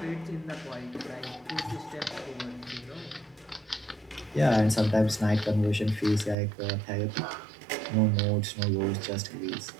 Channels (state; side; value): drops out; left; at 6.4 s